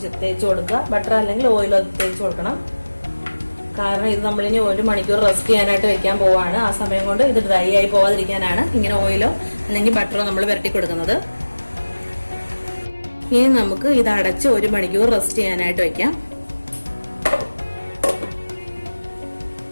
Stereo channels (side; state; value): both; inverted; correlation -1.00